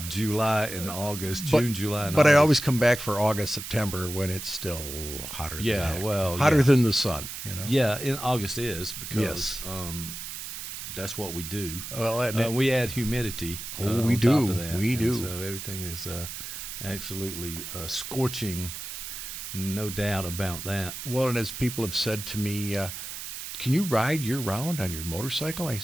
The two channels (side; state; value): right; noise; hiss, 8 dB below the sound